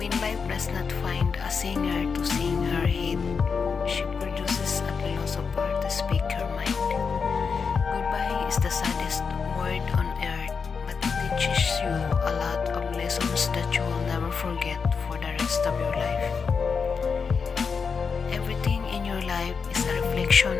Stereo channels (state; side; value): quieter; right; 5.6 dB